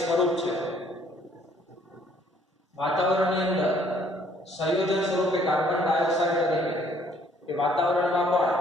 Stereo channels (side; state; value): both; normal; correlation 0.62